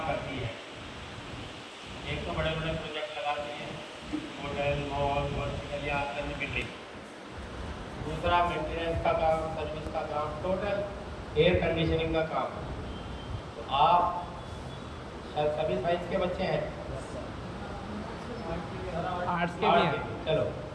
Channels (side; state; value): both; identical; correlation 1.00